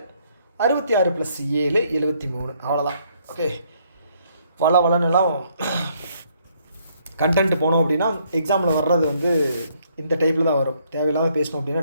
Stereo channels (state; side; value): inverted; both; correlation -0.68